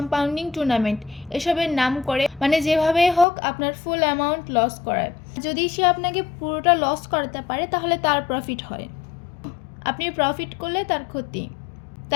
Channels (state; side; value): drops out; right; at 3.2 s